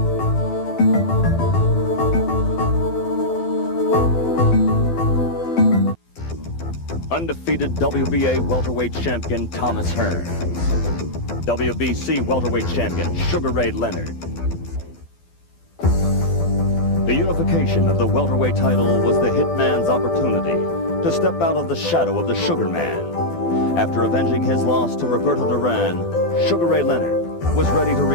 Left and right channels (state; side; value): late; right; 12 ms